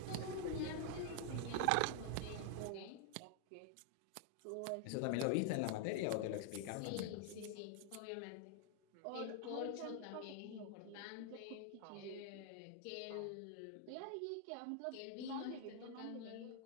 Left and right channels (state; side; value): different; both; correlation 0.00